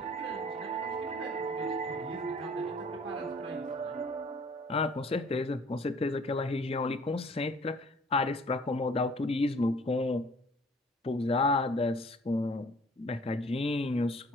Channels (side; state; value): both; normal; correlation 0.53